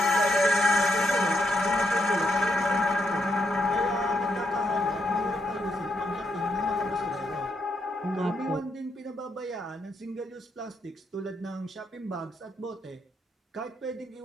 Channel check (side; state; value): both; normal; correlation 0.79